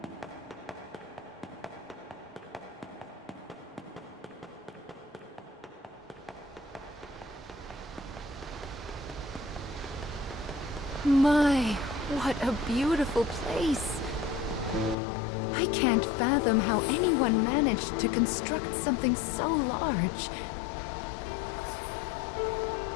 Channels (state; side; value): drops out; right; at 15.0 s